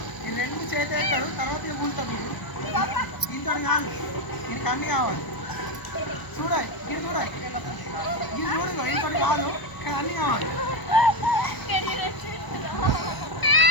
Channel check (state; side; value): late; right; 1.0 ms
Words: ఈ రెండు చేతులు ఎత్తాడు, తర్వాత ఇక కూలుతాడు చూడు. ఇంత కాదు, దీనికి అన్నీ కావాలి. చూడాలి ఇది చూడాలి, ఇది చూడు, ఇంత కాదు కానీ అన్నీ కావాలి.